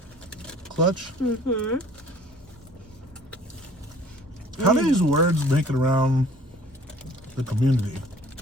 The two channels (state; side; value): normal; both; correlation 0.53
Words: Clutch. How do these words make it around the community?